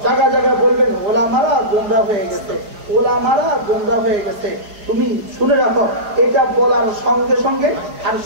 জায়গায় জায়গায় বলবেন ওলামারা গুমরাহ হয়ে গেছে, ওলামারা গুমরাহ হয়ে গেছে। তুমি শুনে রাখো, এটা বলার সঙ্গে সঙ্গে আর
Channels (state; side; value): late; left; 4.8 ms